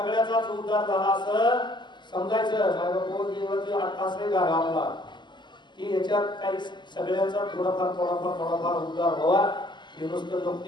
उद्धार झाला असं समजायचं. असं गाव आपला की याच्यात काही सगळ्यांचा थोडाफार उद्धार व्हावा. हे नुसतं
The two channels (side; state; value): right; late; 0.22 ms